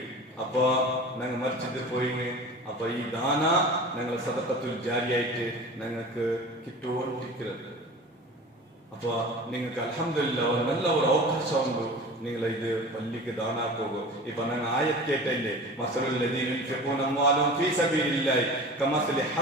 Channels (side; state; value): both; normal; correlation 0.36